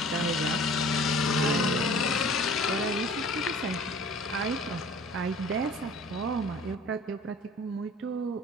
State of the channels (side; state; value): both; normal; correlation 0.46